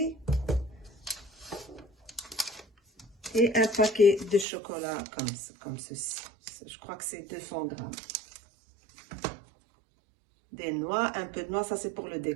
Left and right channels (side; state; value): left; drops out; at 4.5 s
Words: et un paquet de chocolat comme ceci, je crois que c'est 200 g. Des noix, un peu de noix, ça c'est pour